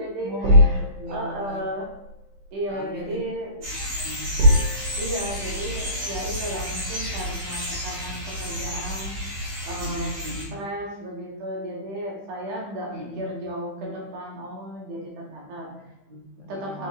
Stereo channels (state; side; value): late; left; 15 ms